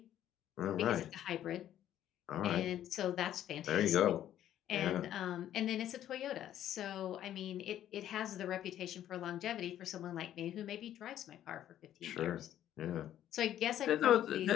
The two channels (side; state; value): right; quieter; 11.6 dB